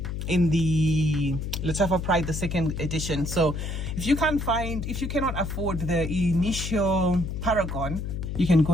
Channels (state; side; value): noise; left; hum, 4 dB below the sound